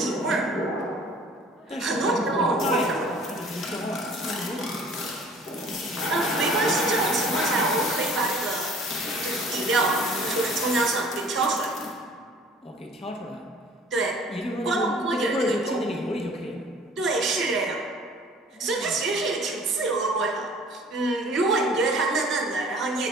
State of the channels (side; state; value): both; normal; correlation 0.50